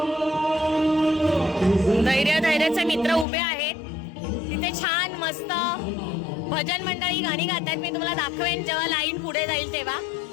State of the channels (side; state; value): right; drops out; at 3.2 s